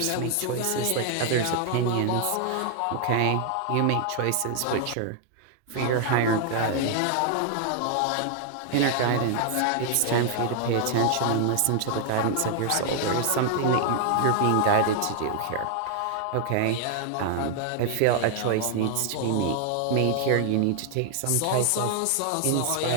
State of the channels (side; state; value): both; different; correlation 0.00